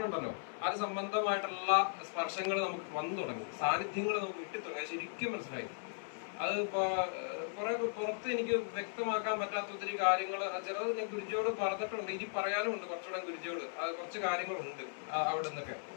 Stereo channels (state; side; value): silent; right; 53 dB below the other